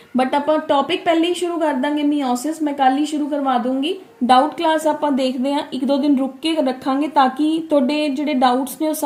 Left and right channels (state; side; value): identical; both; correlation 1.00